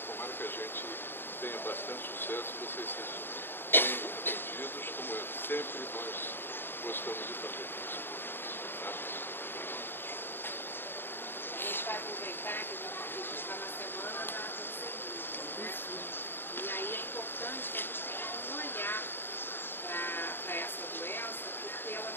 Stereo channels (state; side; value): late; right; 0.10 ms